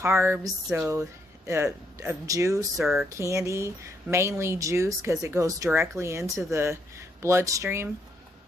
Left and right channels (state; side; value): normal; both; correlation 0.75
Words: so of juice or candy, mainly juice, because it goes directly into the bloodstream.